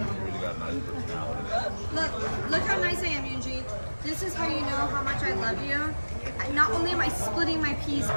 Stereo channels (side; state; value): both; inverted; correlation -1.00